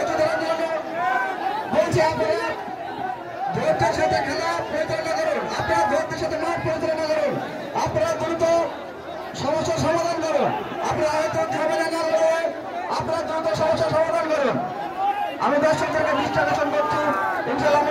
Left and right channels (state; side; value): identical; both; correlation 1.00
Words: ধরার জন্য বলছি, আপনারা ধৈর্যের সাথে খেলা পরিচালনা করুন, আপনারা ধৈর্যের সাথে মাঠ পরিচালনা করুন, আপনারা দ্রুত সমস্যার সমাধান করুন। আপনারা হয়তো ঝামেলা না করে আপনারা দ্রুত সমস্যার সমাধান করুন। আমি দর্শকদেরকে দৃষ্টি আকর্ষণ করছি, ইনশাআল্লাহ